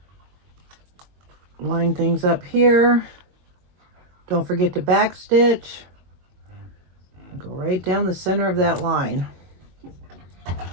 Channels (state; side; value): late; left; 22 ms